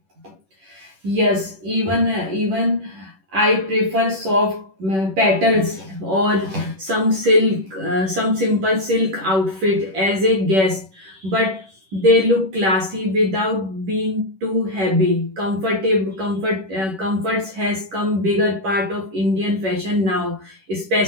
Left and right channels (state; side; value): late; left; 10 ms